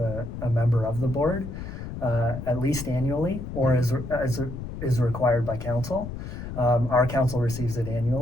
member of the board, at least annually, or as is required by council. Our council receives it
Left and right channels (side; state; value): left; noise; rumble, 8 dB below the sound